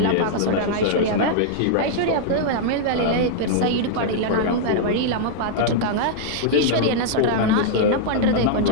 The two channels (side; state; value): both; different; correlation -0.01